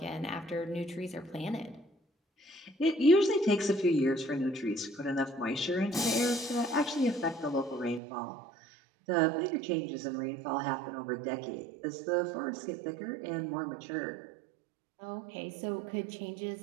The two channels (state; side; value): drops out; left; at 8.0 s